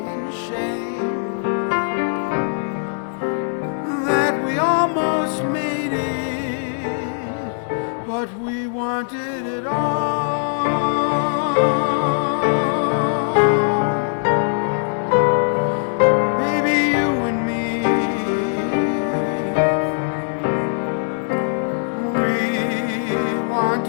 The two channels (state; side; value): silent; right; digital silence